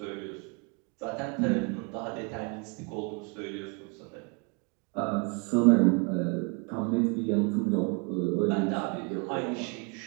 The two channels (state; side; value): quieter; left; 32.0 dB